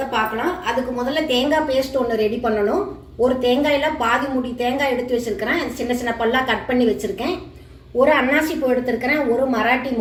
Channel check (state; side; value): identical; both; correlation 1.00